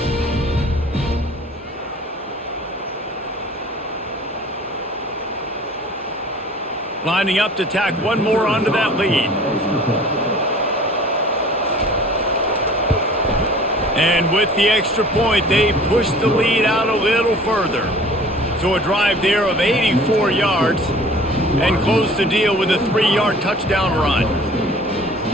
Lining up to tack one more onto that lead. And with the extra point, they push the lead out a little further. So a drive there of 84 yards and close the deal with a 3-yard touchdown run.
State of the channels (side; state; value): both; normal; correlation 0.47